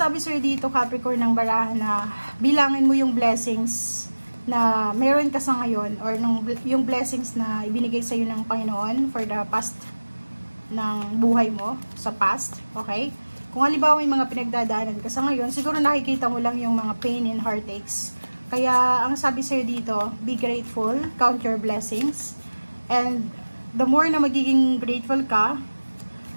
sa'yo dito, Capricorn, ng barahan na bilangin mo yung blessings na meron ka sa ngayon or yung blessings na ibinigay sa'yo ng Panginoon for the past ng buhay mo, sa past, okay? Kung halimbawa may mga pinagdadaanan ka sa ngayon, siguro nakikita mo lang yung mga pain and heartaches. Kaya, ang sabi sa'yo dito, be grateful, count your blessings, and the more na magiging grateful ka,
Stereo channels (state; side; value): inverted; both; correlation -1.00